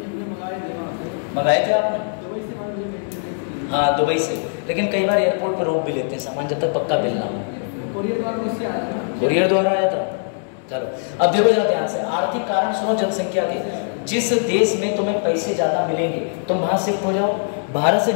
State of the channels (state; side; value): silent; right; digital silence